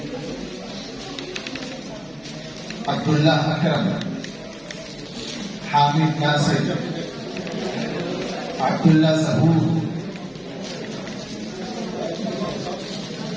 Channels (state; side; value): noise; left; hum, 30 dB below the sound